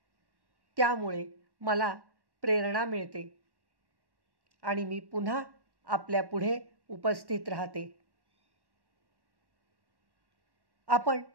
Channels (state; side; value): late; left; 1.1 ms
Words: त्यामुळे मला प्रेरणा मिळते आणि मी पुन्हा आपल्या पुढे उपस्थित राहते. आपण